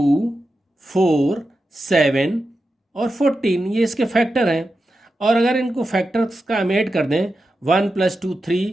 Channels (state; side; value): normal; both; correlation 0.90